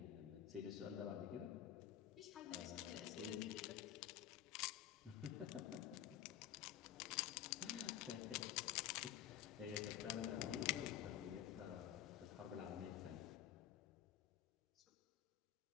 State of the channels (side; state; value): right; quieter; 11.4 dB